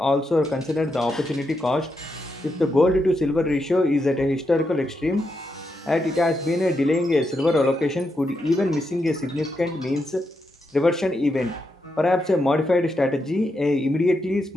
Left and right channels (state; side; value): normal; both; correlation 0.83